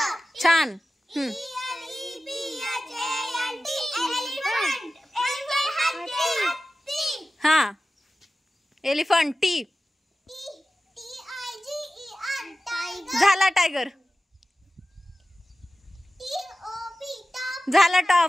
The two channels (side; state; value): both; normal; correlation 0.95